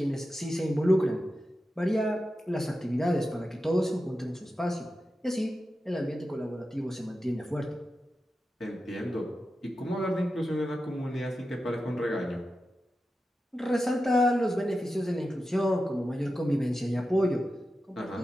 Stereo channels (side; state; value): both; normal; correlation 0.91